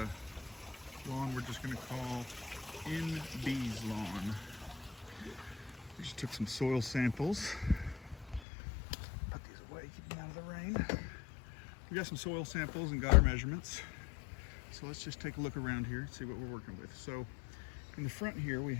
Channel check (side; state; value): right; drops out; at 8.4 s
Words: lawn we're just going to call NB's lawn. We just took some soil samples. Put these away, keep them out of the rain. We got some soil samples and got our measurements. So let's just take a look around here and see what we're working with. So in the front here we